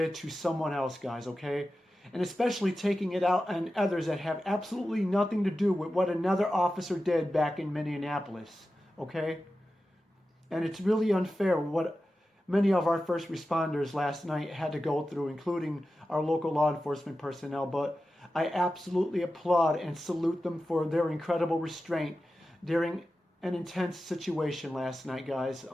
to someone else, guys, okay? And especially taking it out on others that have absolutely nothing to do with what another officer did back in Minneapolis, okay? And it's really unfair what many of our first responders last night had to go through, including our local law enforcement personnel. But I absolutely applaud and salute them for their incredible restraint during an intense situation last night, guys.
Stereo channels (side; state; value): both; normal; correlation 0.93